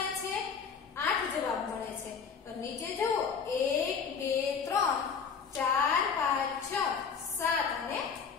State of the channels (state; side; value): quieter; right; 6.2 dB